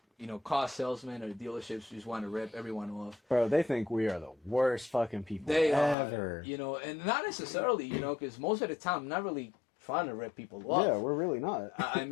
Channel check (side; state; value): right; drops out; at 6.0 s